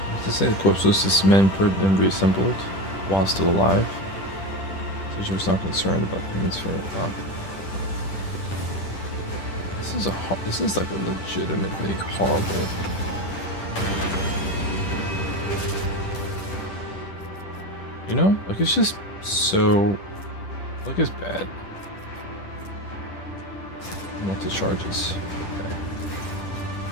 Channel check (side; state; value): right; late; 10 ms